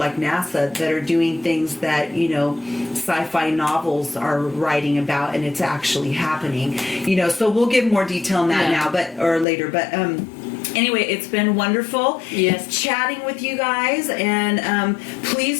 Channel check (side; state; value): right; drops out; at 9.5 s